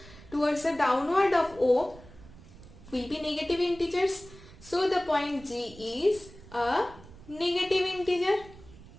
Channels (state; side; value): noise; right; rumble, 20 dB below the sound